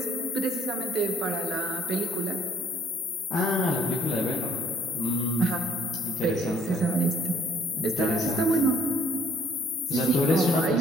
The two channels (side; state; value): both; normal; correlation 0.62